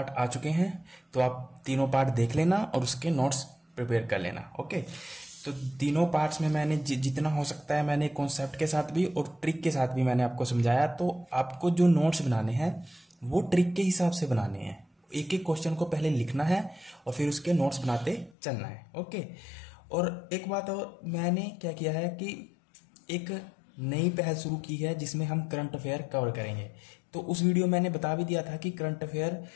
आ चुके हैं, तो आप तीनों पार्ट देख लेना और उसके नोट्स प्रिपेयर कर लेना। ओके, तो तीनों पार्ट्स में मैंने जितना हो सकता है मैंने कॉन्सेप्ट के साथ भी और ट्रिक के साथ भी मैंने आपको समझाया। तो आपको जो नोट्स बनाने हैं वो ट्रिक के हिसाब से बनाने हैं। एक एक क्वेश्चन को पहले लिखना है और फिर उसके नोट्स बनाते चलना है। ओके, और एक बात और मैंने क्या किया है कि एक नई पहल शुरू की है जिसमें हम करंट अफेयर कवर करेंगे। तो उस वीडियो में मैंने बता भी दिया था कि करंट अफेयर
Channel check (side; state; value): right; drops out; at 18.4 s